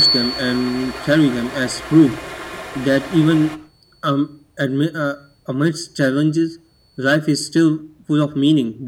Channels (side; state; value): both; identical; correlation 1.00